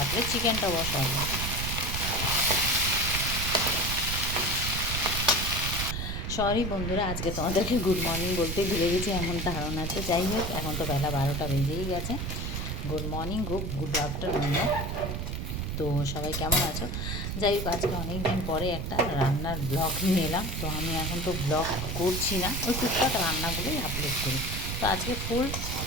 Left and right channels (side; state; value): right; noise; rumble, 3 dB below the sound